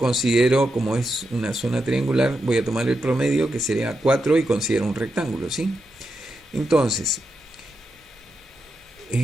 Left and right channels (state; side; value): normal; both; correlation 0.86